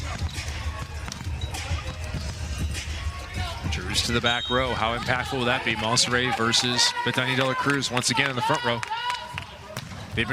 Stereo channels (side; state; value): both; identical; correlation 1.00